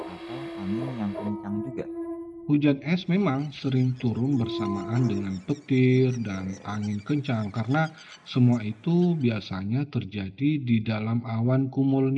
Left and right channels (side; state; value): both; identical; correlation 1.00